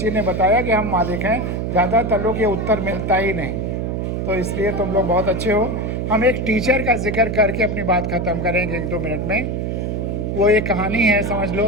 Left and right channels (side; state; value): right; noise; hum, 2 dB below the sound